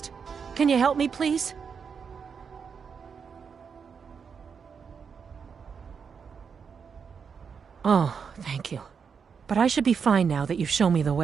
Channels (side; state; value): left; quieter; 6.3 dB